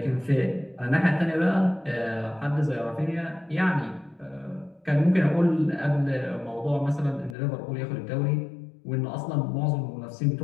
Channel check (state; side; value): drops out; right; at 7.4 s